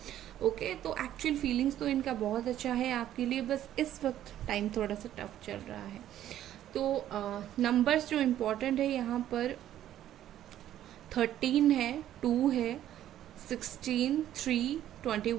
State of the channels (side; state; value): left; quieter; 12.0 dB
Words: ओके। तो एक्चुअल फीलिंग्स तो इनका बहुत अच्छा है आपके लिए, बस इस वक्त टाइम थोड़ा सा टफ चल रहा है। तो नंबर्स जो इम्पोर्टेंट है यहाँ पर 13 है, 2 है, 16, 3,